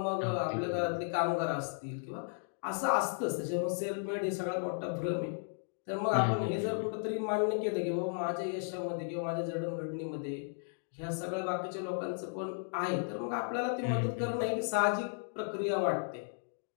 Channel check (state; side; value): silent; right; digital silence